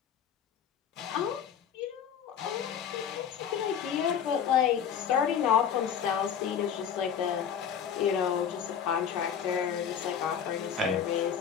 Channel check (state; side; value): quieter; right; 8.0 dB